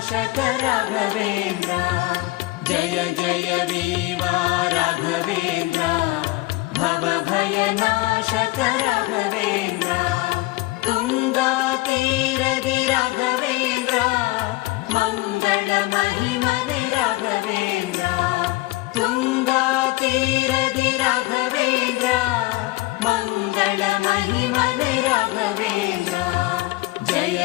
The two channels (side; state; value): right; quieter; 20.1 dB